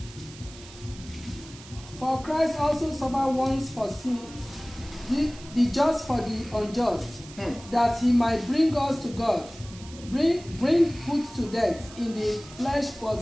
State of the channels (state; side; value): noise; right; hiss, 18 dB below the sound